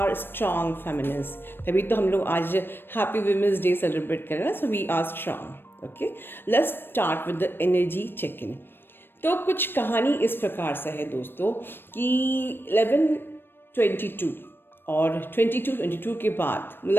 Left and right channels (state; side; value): late; right; 0.099 ms